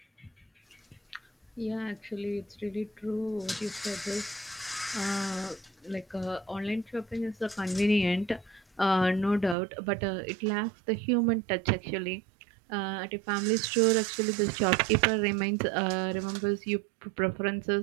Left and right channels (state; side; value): drops out; left; at 9.6 s